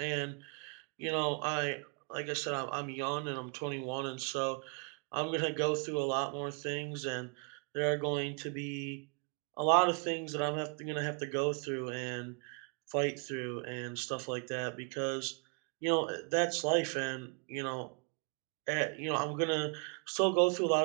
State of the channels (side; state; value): left; quieter; 36.5 dB